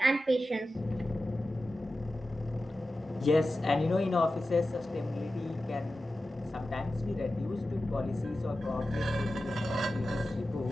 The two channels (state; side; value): normal; both; correlation 0.94